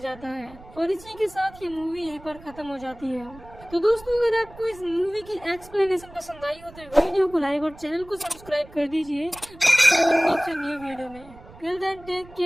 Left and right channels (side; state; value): right; noise; rumble, 21 dB below the sound